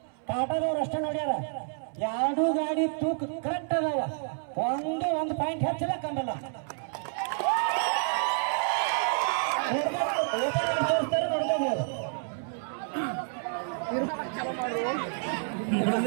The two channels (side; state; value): left; silent; 58 dB below the other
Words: ಕಾಟದವ್ರು ಅಷ್ಟೇ ನೋಡ್ಯಾರ. ಎರಡು ಗಾಡಿ ತೂಕ ಕರೆಕ್ಟ್ ಅದಾವ, ಒಂದು ಪಾಯಿಂಟ್ ಹೆಚ್ಚಿಲ್ಲ ಕಮ್ಮಲ್ಲ. ತೋರಿಸ್ತಾರೆ ನೋಡ್ಕೋಬಹುದು.